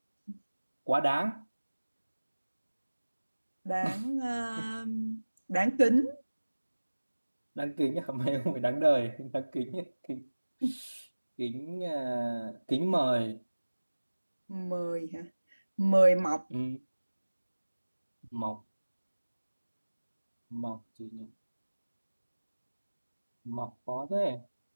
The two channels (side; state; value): both; inverted; correlation -1.00